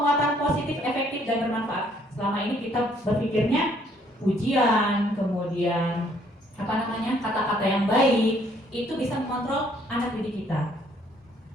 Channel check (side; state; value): both; normal; correlation 0.65